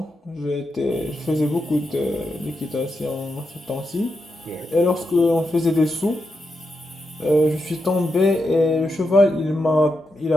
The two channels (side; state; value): both; normal; correlation 0.86